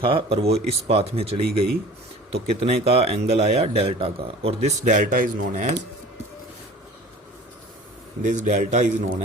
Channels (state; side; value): normal; both; correlation 0.44